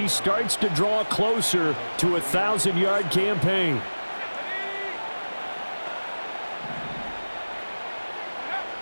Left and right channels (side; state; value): both; inverted; correlation -1.00